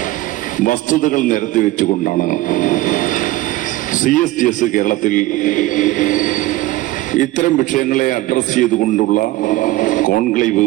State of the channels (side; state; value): left; quieter; 17.6 dB